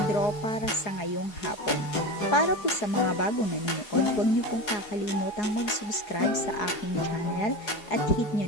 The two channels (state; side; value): late; right; 4.8 ms